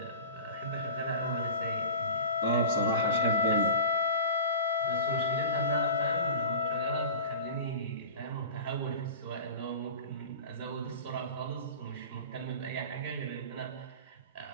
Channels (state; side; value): inverted; both; correlation -0.36